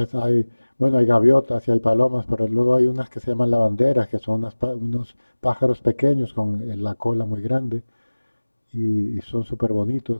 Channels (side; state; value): both; inverted; correlation -1.00